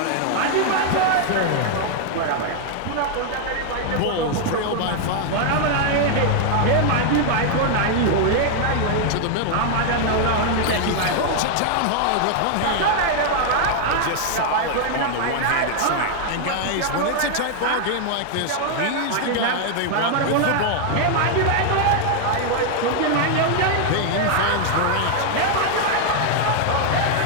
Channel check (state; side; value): different; both; correlation 0.00